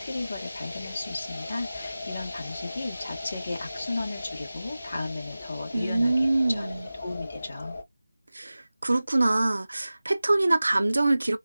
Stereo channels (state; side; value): inverted; both; correlation -0.97